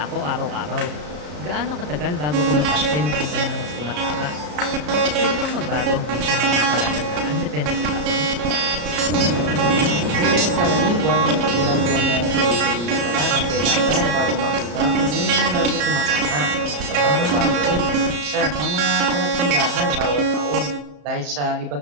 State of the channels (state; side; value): late; left; 34 ms